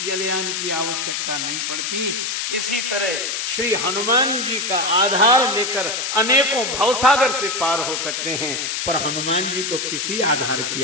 जलयान की आवश्यकता नहीं पड़ती। इसी तरह श्री हनुमान जी का आधार लेकर अनेकों भवसागर से पार हो सकते हैं, पर हनुमान जी को किसी आधार की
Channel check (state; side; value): noise; left; hiss, 2 dB below the sound